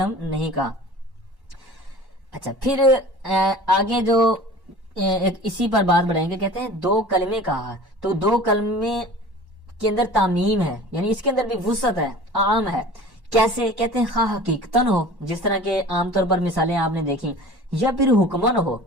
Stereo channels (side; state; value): left; late; 1.1 ms